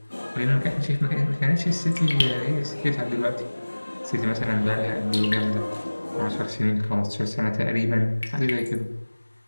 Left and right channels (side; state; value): both; inverted; correlation -1.00